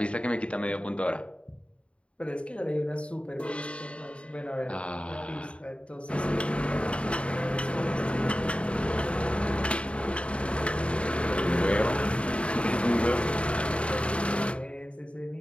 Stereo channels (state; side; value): late; right; 0.060 ms